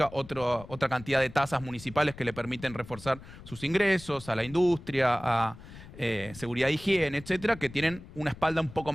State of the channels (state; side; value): noise; left; rumble, 17 dB below the sound